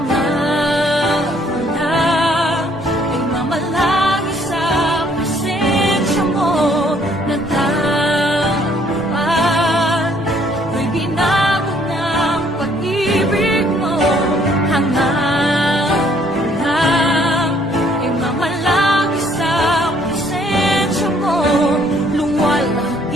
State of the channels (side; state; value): both; normal; correlation 0.64